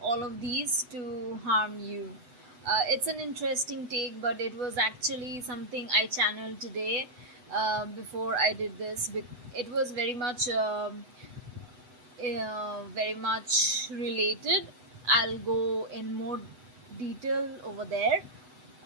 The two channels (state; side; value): late; left; 8.1 ms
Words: all of these to harm you. It's an interesting take, but it was actually something I channeled today before I did this. It was very much related. I'll go in more detail over there.